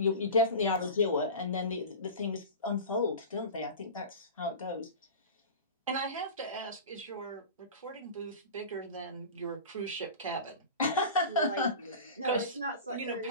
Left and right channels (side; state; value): both; inverted; correlation -0.32